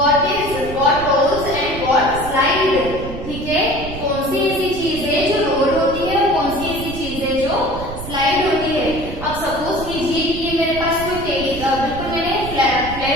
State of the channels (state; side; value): noise; right; rumble, 10 dB below the sound